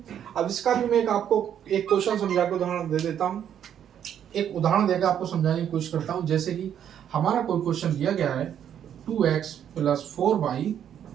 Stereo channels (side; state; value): left; quieter; 9.5 dB